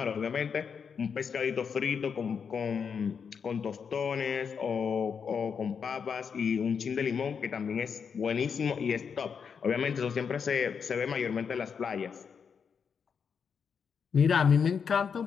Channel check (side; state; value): right; quieter; 6.5 dB